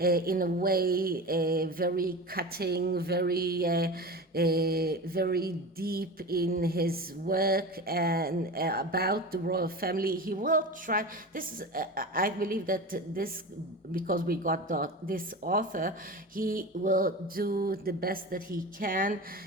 a way very cutting, very deep in his work and about the royal family. He will try. This is I believe that this, because we got this author, he will do the best that he can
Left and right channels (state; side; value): normal; both; correlation 0.29